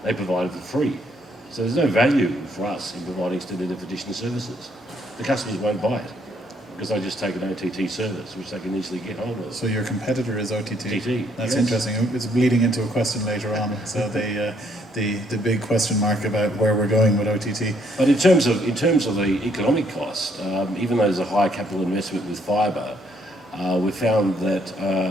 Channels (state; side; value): normal; both; correlation 0.69